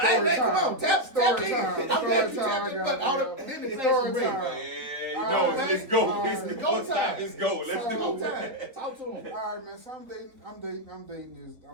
hey man, come on, tap Story in. time. I'm glad you Story time, tapped in, I but got all it, the yo. then the Story next time. ring. Yeah, Alright, let's go. alright. It's Go go time. time. Let's go. Let's Go do time. it. Talk to him. All right, man. So I'm dating this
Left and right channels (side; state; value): left; late; 4.1 ms